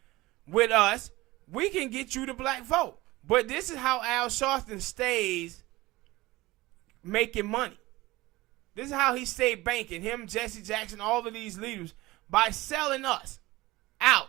with us, we can get you the black vote. But this is how Al Sharpton stays making money. This is how he stayed banking, him, Jesse Jackson, all of these leaders, by selling us out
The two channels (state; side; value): quieter; left; 19.7 dB